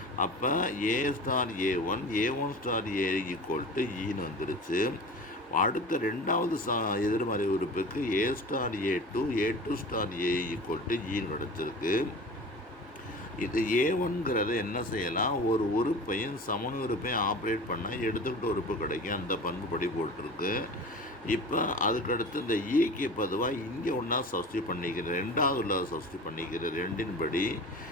அப்போ A star A1 star A equal to ஈன்னு வந்துருச்சு. அடுத்த 2வது எதிர்மறை உறுப்புக்கு A star A2 star A equal to ஈன்னு கிடச்சிருக்கு. இது A1ங்கிறத என்ன செய்யலாம், ஒரு உறுப்பையும் சமணி உறுப்பையும் ஆப்ரேட் பண்ணால் எடுத்துக்கிட்ட உறுப்பு கிடைக்கும். அந்த பண்பு படி போட்டிருக்கு. இப்போ அதுக்கடுத்து இந்த ஈக்கு பொதுவாக இங்கே ஒன்றா சப்ஸ்டியூட் பண்ணிக்கிறேன், 2வது உள்ள சப்ஸ்டியூட் பண்ணிக்கிறேன். 2ன் படி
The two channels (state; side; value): normal; both; correlation 0.36